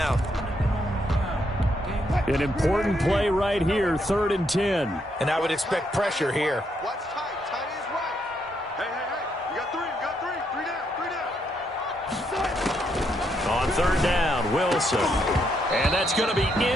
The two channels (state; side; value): normal; both; correlation 0.77